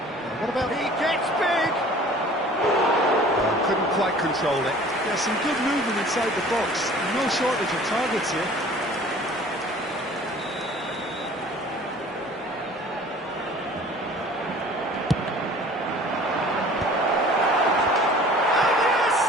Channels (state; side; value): normal; both; correlation 0.48